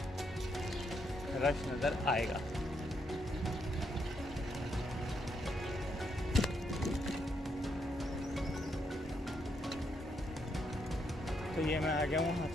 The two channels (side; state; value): both; normal; correlation 0.77